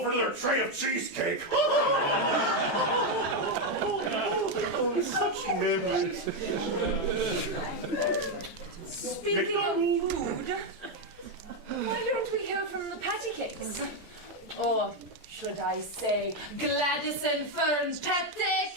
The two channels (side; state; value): right; late; 14 ms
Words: for another tray of cheesecake. Such memories. Speaking of food, why don't we hear from the patty cakes? Or should I say Gladys and Fern's patty